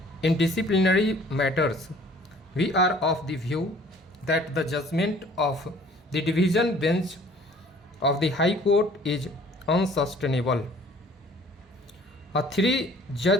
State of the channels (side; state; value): both; normal; correlation 0.53